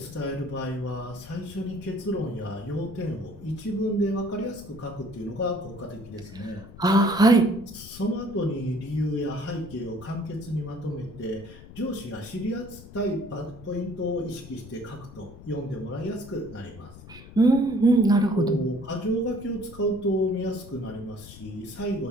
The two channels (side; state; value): left; noise; rumble, 16 dB below the sound